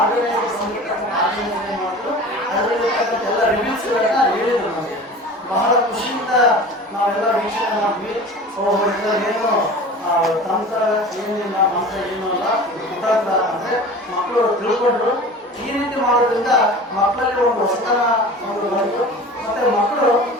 ಸಂಗೀತ ಆರ್ಗನೈಸರ್ ಮಾಡಿದ್ರು. ಅದರಲ್ಲಿರ್ತಕ್ಕಂಥ ಎಲ್ಲ ರಿವ್ಯೂಸ್ಗಳನ್ನ ಹೇಳಿದರು ನಮಗೆ. ಬಹಳ ಖುಷಿಯಿಂದ ನಾವೆಲ್ಲ ವೀಕ್ಷಣೆ ಮಾಡಿದ್ವಿ. ಏನು ತಂತ್ರ ಏನಿಲ್ಲ, ಮಂತ್ರ ಏನೂ ಅಲ್ಲ, ಕುತಂತ್ರ ಅಂದರೆ ಮಕ್ಕಳು ತಿಳ್ಕೊಂಡ್ರು. ಈ ರೀತಿ ಮಾಡೋದ್ರಿಂದ ಮಕ್ಕಳಲ್ಲಿ ಒಂದು ಹೊಸತನ ಒಂದು ಬಂತು. ಮತ್ತು ಮಕ್ಕಳು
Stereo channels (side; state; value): both; normal; correlation 0.38